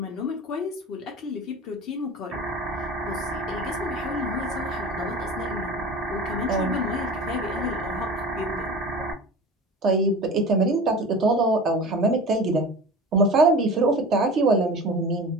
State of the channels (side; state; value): both; normal; correlation 0.36